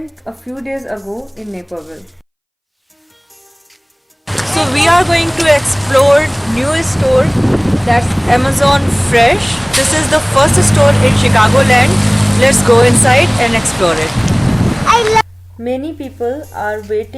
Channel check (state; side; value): identical; both; correlation 1.00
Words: a few days ago in Naperville. So we are going to explore new store that's Amazon Fresh. This is the first store in Chicagoland. Let's go inside and explore it. Many people are